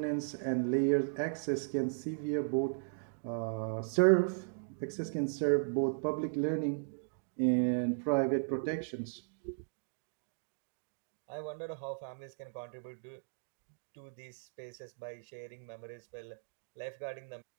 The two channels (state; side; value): silent; left; digital silence